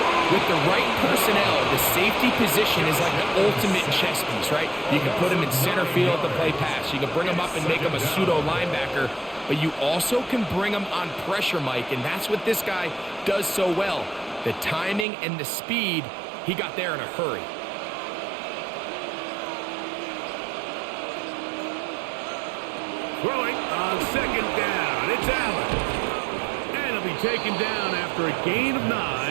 With the right personnel, the safety position is like the ultimate chess piece, right? You can put him in center field to play pass. You can bring him up and make him a pseudo linebacker, but you also can bring him on pressure, Mike, and that's what this guy does so well. The timing and the speed, he got there in a hurry. Throwing on 2nd down. It's Allen. Be taken down after a gain of 9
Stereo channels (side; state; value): left; drops out; at 15.1 s